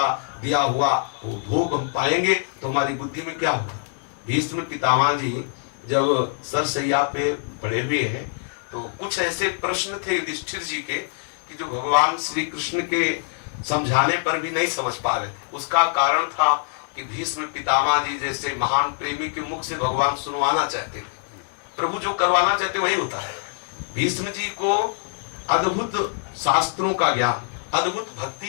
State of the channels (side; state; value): right; silent; digital silence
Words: दिया हुआ वो भोग हम पाएंगे तो हमारी बुद्धि में क्या होगा? भीष्म पितामह जी जब सरसैया पे पड़े हुए हैं तो कुछ ऐसे प्रश्न थे युधिष्ठिर जी के कि जो भगवान श्री कृष्ण के समझाने पर भी नहीं समझ पा रहे। उसका कारण था कि भीष्म पितामह जी जैसे महान प्रेमी के मुख से भगवान सुनवाना चाहते थे। प्रभु जो करवाना चाहते वही होता है। भीष्म जी को अद्भुत शास्त्रों का ज्ञान, अद्भुत भक्ति